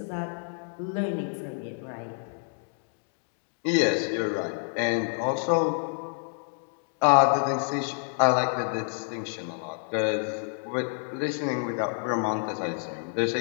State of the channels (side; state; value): right; silent; 58 dB below the other